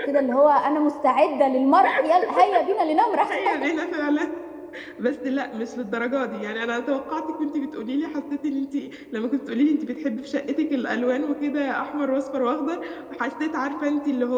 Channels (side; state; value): both; identical; correlation 1.00